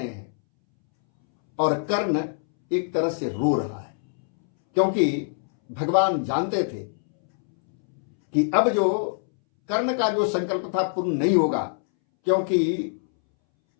हैं और कर्ण एक तरह से रो रहा है, क्योंकि भगवान जानते थे कि अब जो कर्ण का जो संकल्प था पूर्ण नहीं होगा, क्योंकि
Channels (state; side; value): silent; right; 63 dB below the other